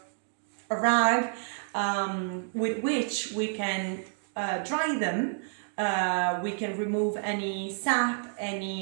a rag with which we can dry them. We can remove any sap,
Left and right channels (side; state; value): left; silent; 58 dB below the other